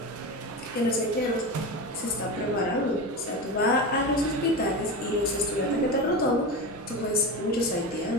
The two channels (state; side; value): normal; both; correlation 0.23